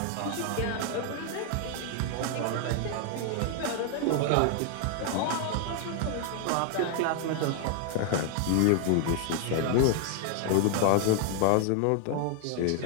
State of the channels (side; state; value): both; different; correlation 0.00